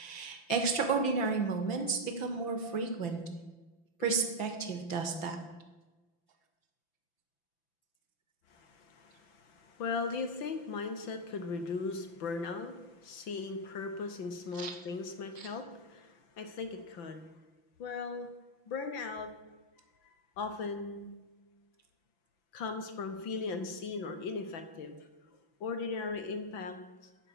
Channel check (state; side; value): late; right; 5.9 ms